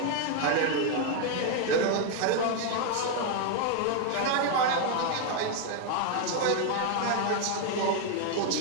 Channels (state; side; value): different; both; correlation 0.01